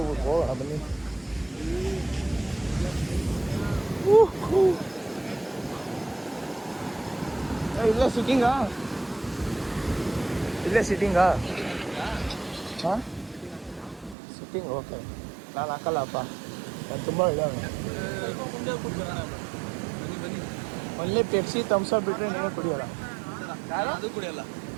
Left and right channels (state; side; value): drops out; left; at 14.2 s